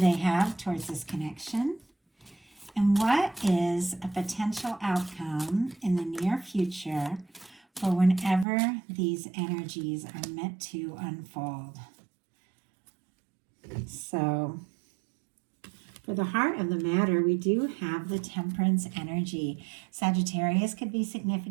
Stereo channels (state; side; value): drops out; left; at 8.5 s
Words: have towards this connection? And what is a potential outcome in the near future for whenever these energies are meant to unfold? So, for the heart of the matter, we do have the Temperance energy. Sagittarius could be